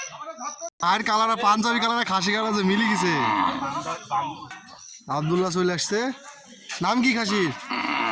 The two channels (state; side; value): identical; both; correlation 1.00